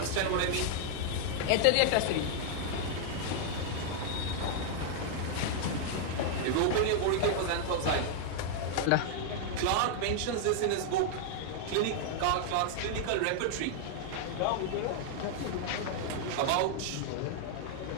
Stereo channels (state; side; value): different; both; correlation 0.00